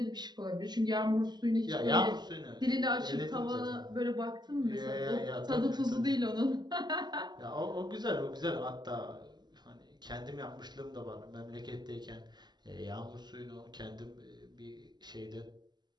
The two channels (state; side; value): late; left; 0.21 ms